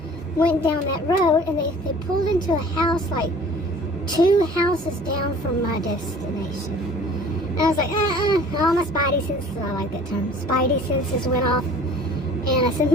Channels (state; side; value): normal; both; correlation 0.48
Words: went down that road, and they pulled into a house like 2 houses down from my destination. And I was like, all my spidey senses, I like that term, spidey senses went off. And I said, I